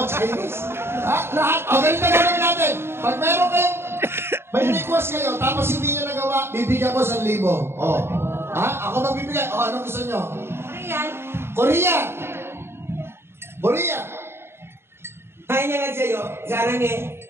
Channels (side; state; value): left; late; 0.12 ms